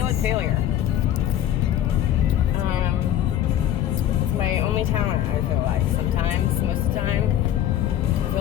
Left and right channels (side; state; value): right; quieter; 11.4 dB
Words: at failure. It's my only talent, I feel like. Sometimes, most of the time, I feel